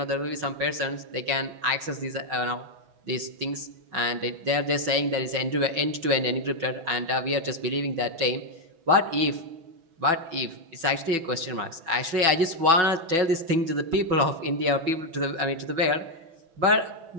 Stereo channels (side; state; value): left; late; 6.1 ms